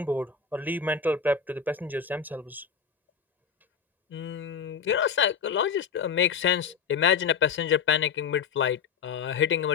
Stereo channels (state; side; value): quieter; right; 6.5 dB